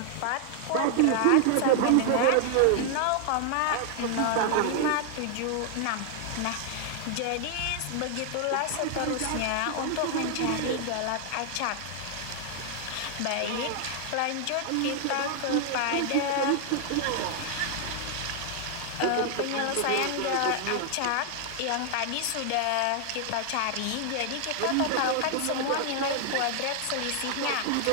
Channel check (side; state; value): both; different; correlation 0.00